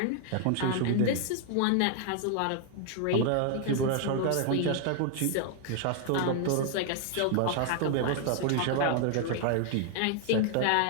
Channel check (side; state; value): both; different; correlation 0.00